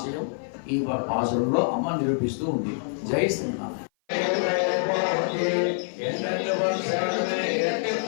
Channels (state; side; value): silent; right; 56 dB below the other